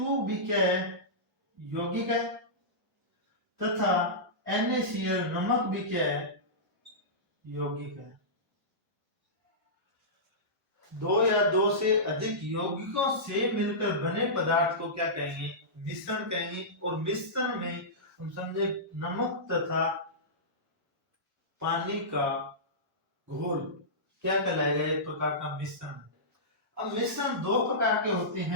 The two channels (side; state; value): both; normal; correlation -0.17